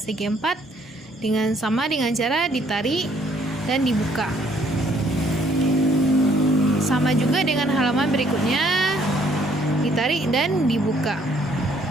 segi 4 dengan cara ditarik dan dibuka. Sama juga dengan halaman berikutnya, ditarik dan dibuka.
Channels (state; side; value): normal; both; correlation 0.64